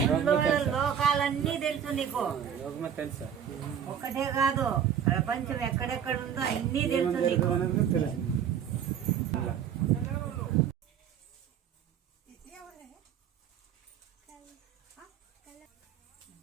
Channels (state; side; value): quieter; left; 8.6 dB